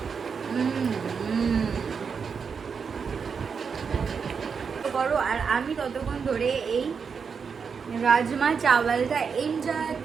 করো আর আমি ততক্ষণ ধরে এই রাজমা চাওয়ালটা এনজয়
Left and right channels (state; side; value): quieter; left; 6.0 dB